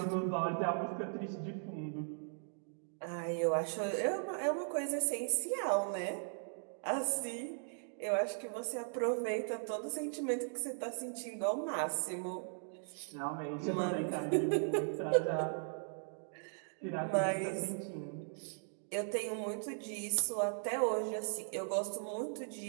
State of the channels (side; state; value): left; silent; digital silence